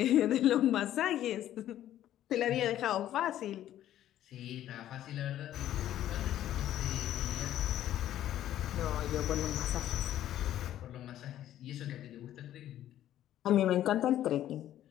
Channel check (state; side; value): quieter; right; 12.3 dB